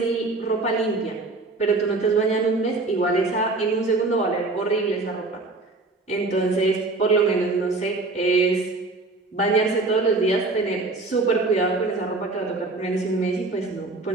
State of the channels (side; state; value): left; quieter; 3.4 dB